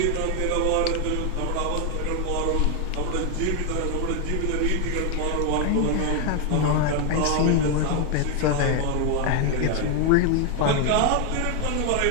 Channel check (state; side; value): different; both; correlation 0.01